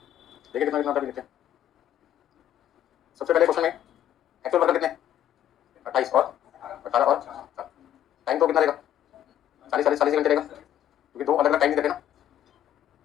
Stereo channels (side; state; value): right; quieter; 11.2 dB